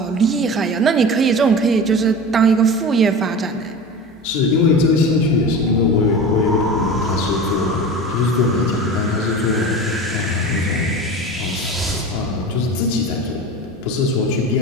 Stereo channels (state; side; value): normal; both; correlation 0.32